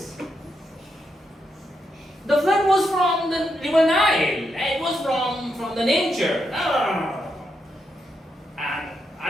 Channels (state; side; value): normal; both; correlation 0.82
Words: The flood was from the river Nile. It was from the nature. No. And